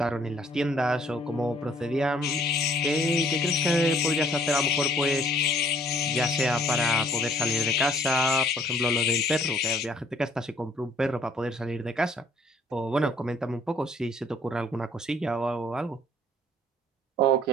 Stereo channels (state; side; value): normal; both; correlation 0.59